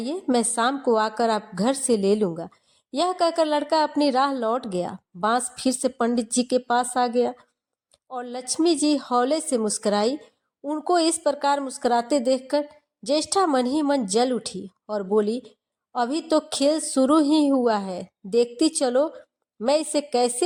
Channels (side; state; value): both; identical; correlation 1.00